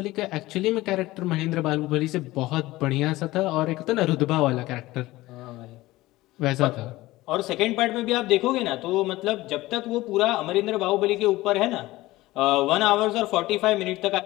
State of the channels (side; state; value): right; quieter; 18.2 dB